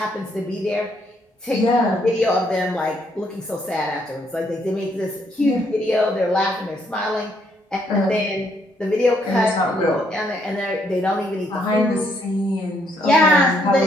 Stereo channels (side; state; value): both; normal; correlation 0.72